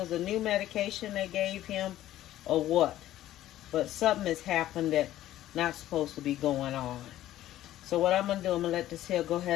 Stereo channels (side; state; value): right; quieter; 13.7 dB